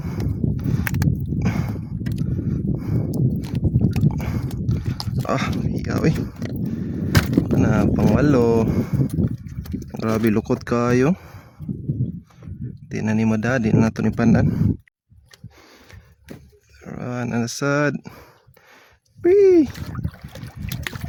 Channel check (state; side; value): identical; both; correlation 1.00